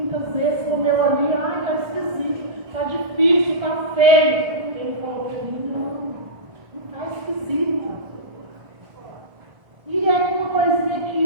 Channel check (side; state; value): left; late; 1.3 ms